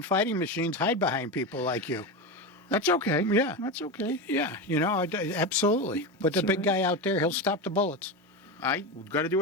fighting machines hide behind people like you. That's okay. Yeah. That's okay. Yeah, absolutely. But the big guy out there, he'll stop the bullets. I got to do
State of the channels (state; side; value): normal; both; correlation 0.18